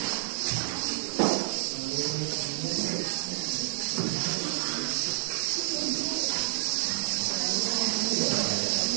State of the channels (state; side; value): silent; left; digital silence